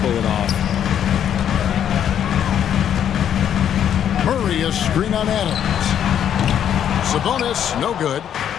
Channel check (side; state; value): right; quieter; 9.5 dB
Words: it off. Murray a screen on Adams. Sabonis, no good.